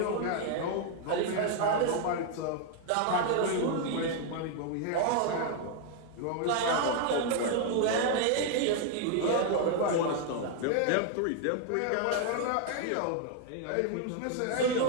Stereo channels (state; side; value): different; both; correlation 0.00